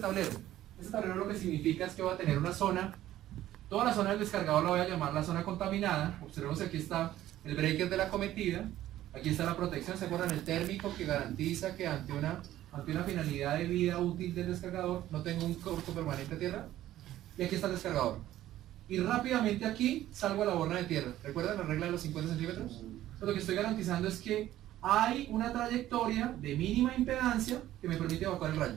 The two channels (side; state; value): left; quieter; 13.6 dB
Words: Este tablero lo que significa es que va a tener una zona, toda la zona del descargador la voy a llamar la zona contaminada. Observemos que aquí está el breaker de la acometida, aquí está la protección, ¿se acuerdan? El térmico que garantiza que ante una finalidad de vida útil del descargador no tengo un corto permanente a tierra. Y aquí está el descargador. Y rápidamente aquí salgo a la borna de tierra. ¿Recuerdan la regla de los 50 centímetros? Entonces, lo que estoy garantizando es que hay una trayectoria de mínima impedancia que me permite evacuar el